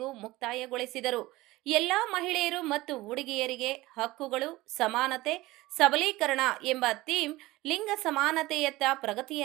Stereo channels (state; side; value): quieter; left; 19.1 dB